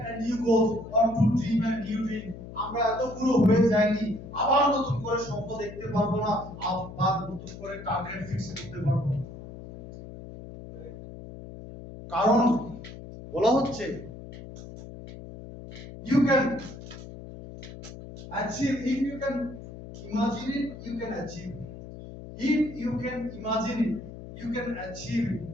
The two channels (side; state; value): left; noise; hum, 13 dB below the sound